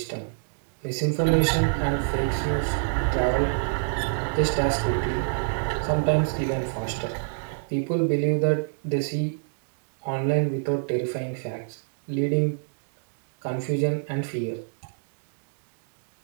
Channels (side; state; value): left; silent; digital silence